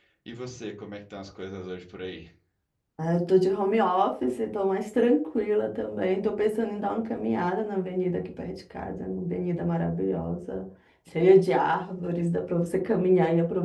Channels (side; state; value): both; identical; correlation 1.00